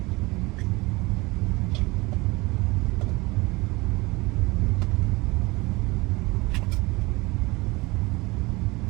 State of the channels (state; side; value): quieter; left; 23.1 dB